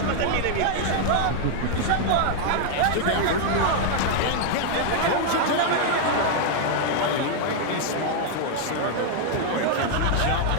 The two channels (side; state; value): both; different; correlation 0.00